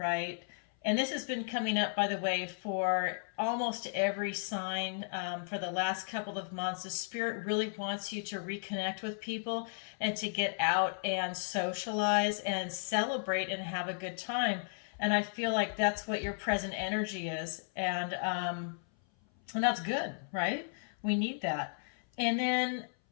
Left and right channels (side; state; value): right; silent; 55 dB below the other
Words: And this has been coming up, by the way, for almost every sign for the last couple of months. The Spirit really wants you to reconnect with people and to get out and socialize and celebrate and have a good time. And I feel like that's what your present energy is. And that's good, right? We need that. And then